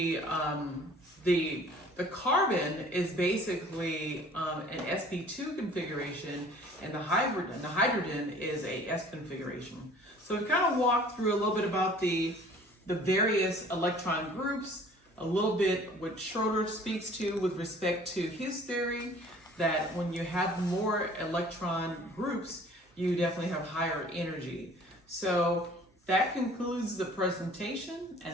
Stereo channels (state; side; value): normal; both; correlation 0.51